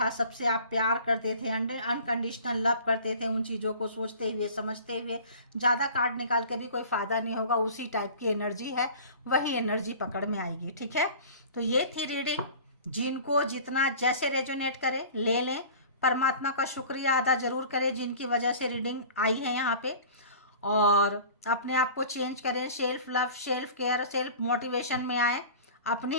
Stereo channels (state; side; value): inverted; both; correlation -0.42